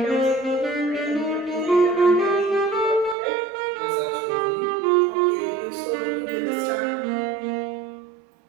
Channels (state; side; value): drops out; left; at 3.2 s